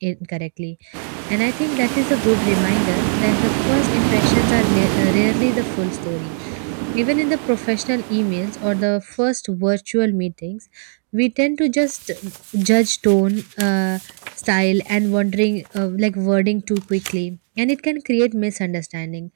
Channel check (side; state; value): left; silent; digital silence